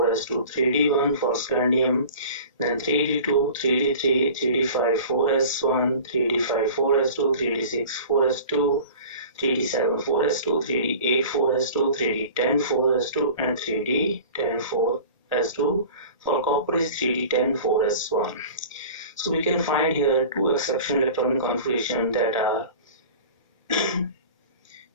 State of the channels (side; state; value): both; inverted; correlation -0.41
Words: 3d1 for scandium, then 3d2, 3d3, 3d5, 4s1, 3d5, 4s2, 3d6, 4s2, 3d7, 4s2, 3d8, 4s2, 3d10, 4s2, and 3d10, 4s2. For copper is 3d10, 4s1. So we can find here two exceptional electronic configurations that are